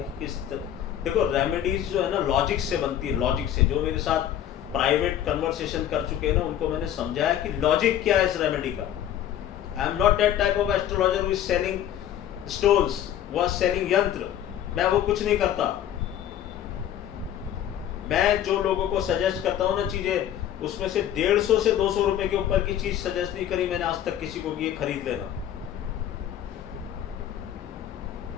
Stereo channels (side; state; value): right; quieter; 10.9 dB